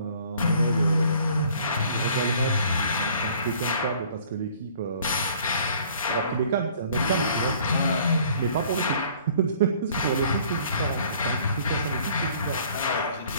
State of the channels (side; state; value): both; inverted; correlation -0.55